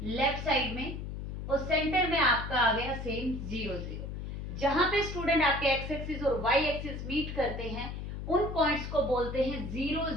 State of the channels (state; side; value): noise; left; hum, 6 dB below the sound